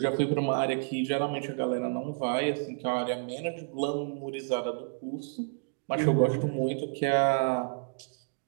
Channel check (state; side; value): silent; left; digital silence